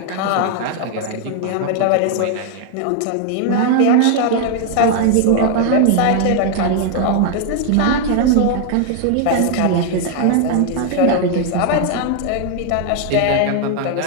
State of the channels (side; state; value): both; different; correlation 0.00